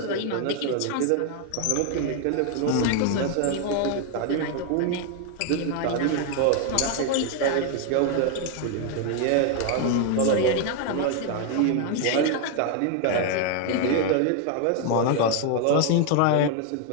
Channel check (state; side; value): different; both; correlation 0.00